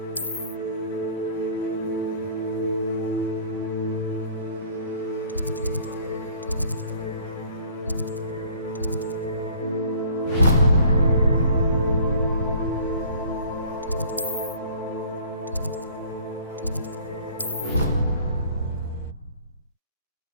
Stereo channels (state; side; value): inverted; both; correlation -0.52